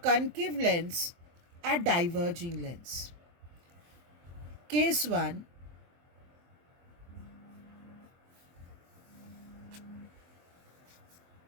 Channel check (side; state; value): left; late; 23 ms